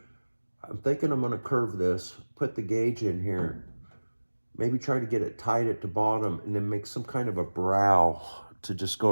I'm thinking I'm going to curve this, put the gauge in here, maybe try to get it tight at the bottom, and then make some kind of a brow to just go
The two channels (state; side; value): inverted; both; correlation -1.00